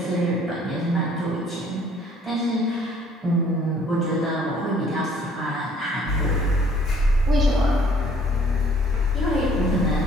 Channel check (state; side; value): normal; both; correlation 0.59